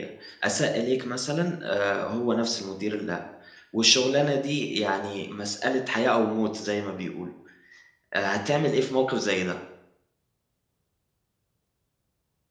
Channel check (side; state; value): both; identical; correlation 1.00